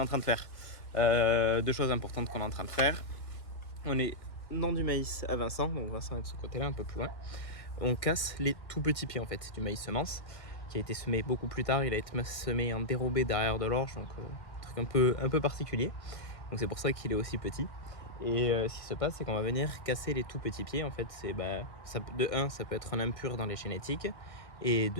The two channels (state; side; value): late; right; 1.8 ms